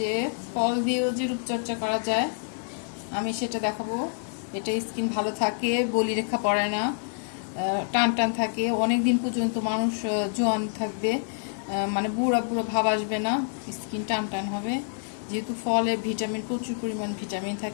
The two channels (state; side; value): silent; right; digital silence